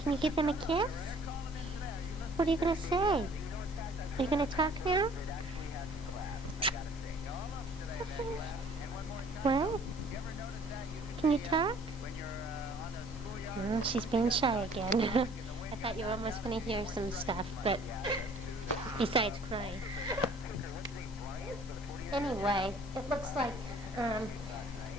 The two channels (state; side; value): normal; both; correlation 0.54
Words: Can you give them a kiss? What are you going to say? Are you going to talk now? What? Can you talk? She's being shy again. I thought you were almost going to hear some stuff, but besides crying. Anyway, it looks like